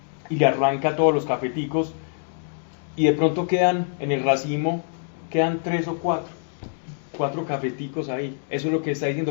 y le arranca todos los cafeticos, y de pronto quedan en el racimo, quedan 3 o 4 cafeticos ahí. Eso es lo que está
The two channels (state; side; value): silent; right; digital silence